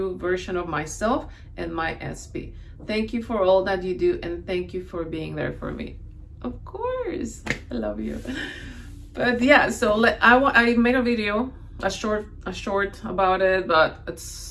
version of myself and my SP. Thank you for all that you do, and thank you for being there for me. Of course, I love you. But yeah, so I made a video, a short about it, but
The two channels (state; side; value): identical; both; correlation 1.00